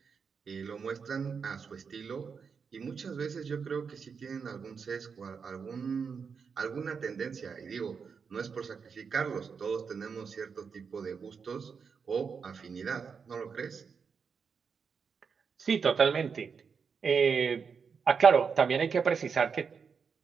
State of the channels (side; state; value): left; quieter; 6.0 dB